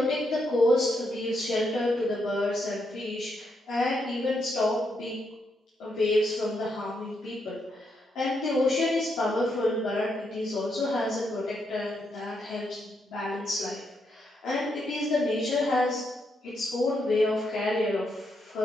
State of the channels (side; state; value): both; normal; correlation 0.79